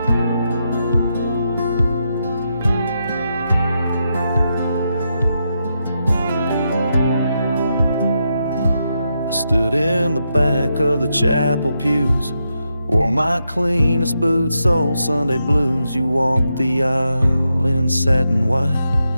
Stood in the back of the chapel pews, wore my cleanest boots, old Sunday blues. You walked the aisle in satin white,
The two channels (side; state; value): both; inverted; correlation -0.84